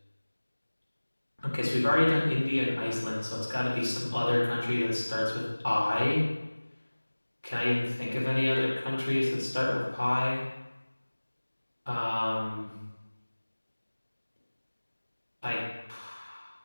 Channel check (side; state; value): both; inverted; correlation -1.00